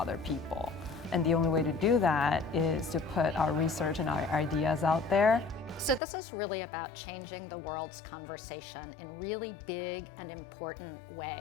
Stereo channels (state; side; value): drops out; right; at 6.0 s